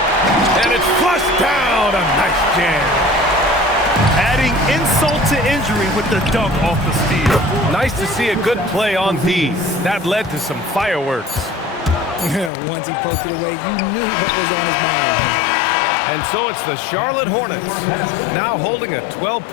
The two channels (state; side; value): drops out; right; at 12.5 s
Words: And it's flushed down. A nice jam. Adding insult to injury with the dunk off the steal. Nice to see a good play on D. That led to some fireworks. Once he poked it away, you knew what was on his mind. And so it's the Charlotte Hornets, now holding a